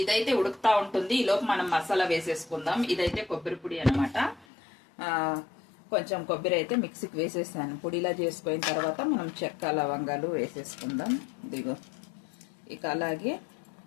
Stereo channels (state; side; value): drops out; right; at 4.5 s